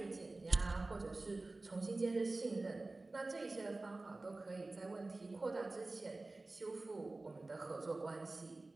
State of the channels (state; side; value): quieter; left; 3.1 dB